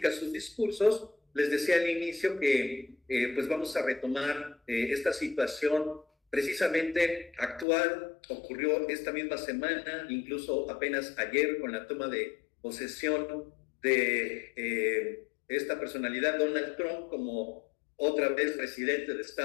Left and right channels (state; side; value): drops out; right; at 7.7 s